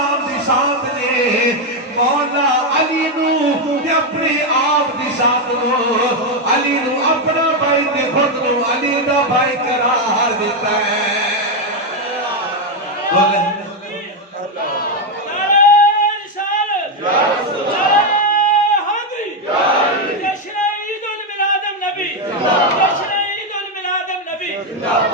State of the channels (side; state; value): both; normal; correlation 0.05